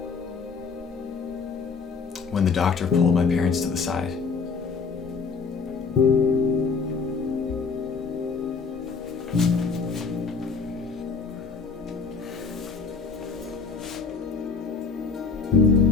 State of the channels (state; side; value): quieter; right; 5.1 dB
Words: when the doctor pulled my parents to the side.